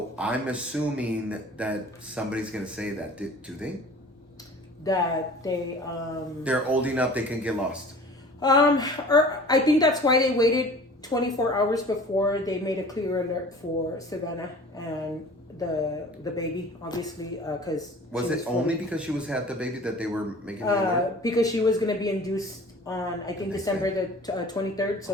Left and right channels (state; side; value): normal; both; correlation 0.45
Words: I'm assuming that somebody's going to say that. Do they? That they're old enough they can get lost. Or I think that's why they waited 24 hours before they made a clear alert for Savanah and the baby, obviously, because was it only because she had the baby that they were making the alert? Because she was going to be induced on, I think, December the 23rd,